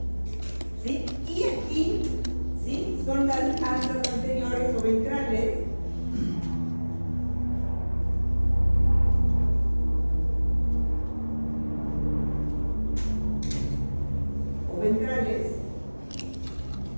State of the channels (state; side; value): inverted; both; correlation -1.00